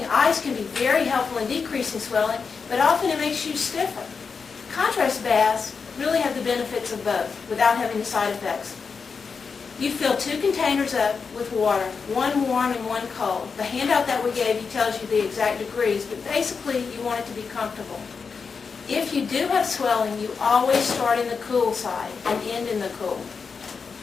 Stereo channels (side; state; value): right; quieter; 5.4 dB